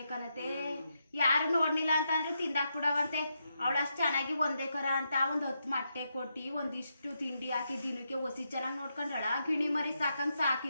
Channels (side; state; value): both; inverted; correlation -0.82